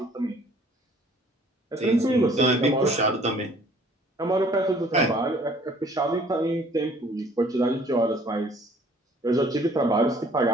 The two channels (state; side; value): normal; both; correlation 0.56